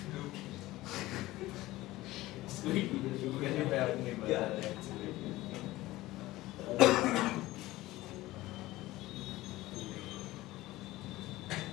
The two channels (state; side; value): quieter; right; 17.8 dB